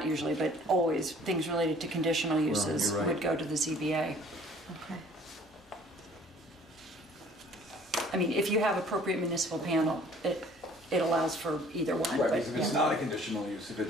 usually, but always, things related to conditional uses you're right. would go to the ZBA. Okay. I mean, if you have appropriate municipal panel, it allows for either one. Right, but, because if it's yeah. not a conditional use, if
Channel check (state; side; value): normal; both; correlation 0.54